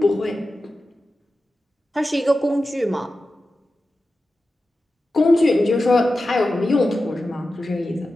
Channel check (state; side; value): normal; both; correlation 0.93